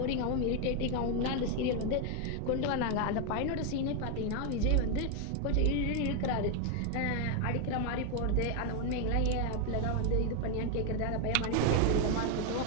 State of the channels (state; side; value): different; both; correlation 0.01